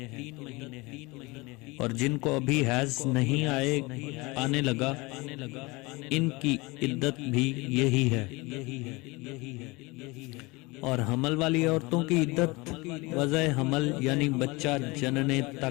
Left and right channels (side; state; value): right; quieter; 24.6 dB